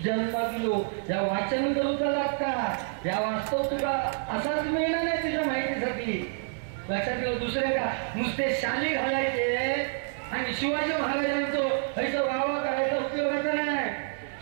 जन्मालो. या वाचन करूचा लागता, या वास्तव तुला असाच मिळणार नाही तुझ्या माहितीसाठी. लक्षात ठेव. दुसरे का नुसते शाली घालायचे आणि शिवाजी महाराजांचं ह्याचा वावा करायचा उपयोगाचा नाही.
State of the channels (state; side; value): silent; left; 59 dB below the other